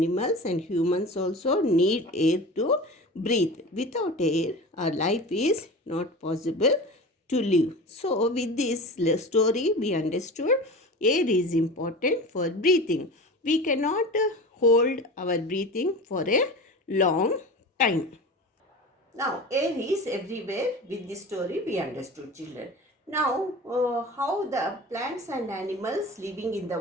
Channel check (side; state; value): both; normal; correlation 0.33